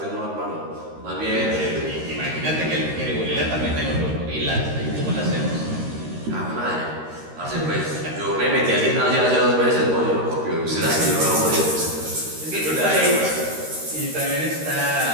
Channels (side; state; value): left; late; 13 ms